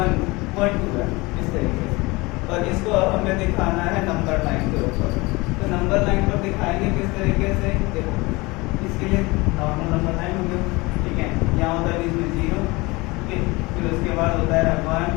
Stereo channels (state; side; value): quieter; right; 23.6 dB